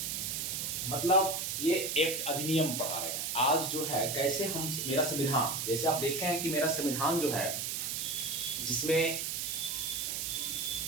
मतलब ये एक्ट अधिनियम पढ़ा रहे हैं। आज जो है कैसे हम मेरा संविधान, जैसे आप देख रहे हैं कि मेरा संविधान जो है जिसमें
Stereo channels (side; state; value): right; noise; hiss, 2 dB below the sound